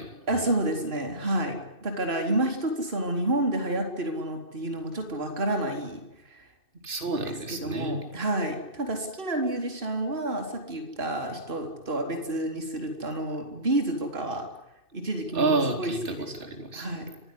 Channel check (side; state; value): left; late; 2.6 ms